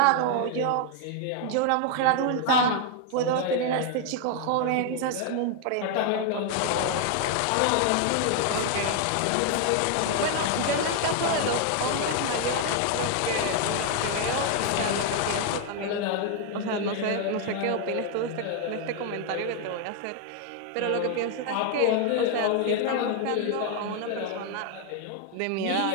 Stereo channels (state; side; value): different; both; correlation 0.00